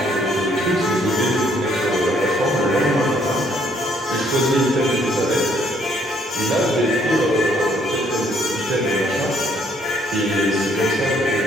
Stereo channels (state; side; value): normal; both; correlation 0.66